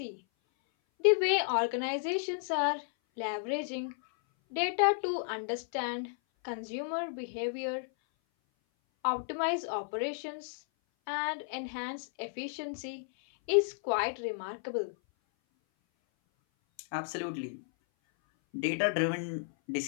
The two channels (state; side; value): silent; right; 56 dB below the other